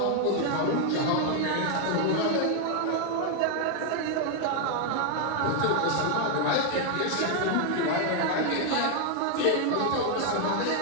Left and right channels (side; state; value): both; different; correlation 0.00